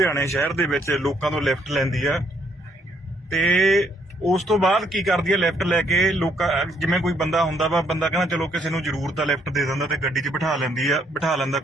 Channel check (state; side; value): normal; both; correlation 0.69